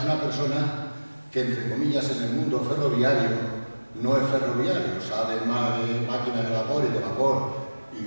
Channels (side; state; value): both; inverted; correlation -1.00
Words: una persona que, entre comillas, en el mundo ferroviario no es ferroviario, sabe más de máquinas de vapor y de vapor,